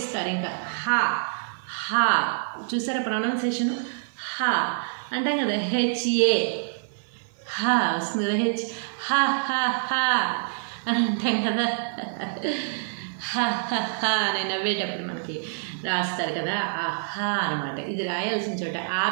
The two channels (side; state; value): left; silent; 56 dB below the other